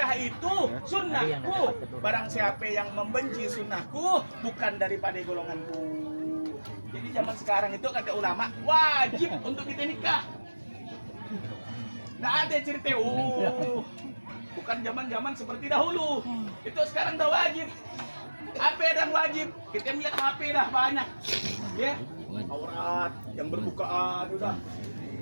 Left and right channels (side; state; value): both; inverted; correlation -1.00